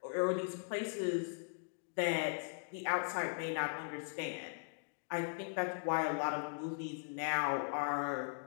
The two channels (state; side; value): silent; right; digital silence